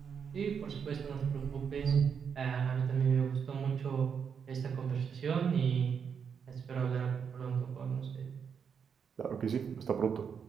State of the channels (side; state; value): left; quieter; 6.9 dB